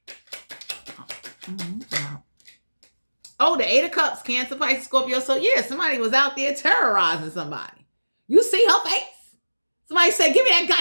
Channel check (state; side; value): inverted; both; correlation -1.00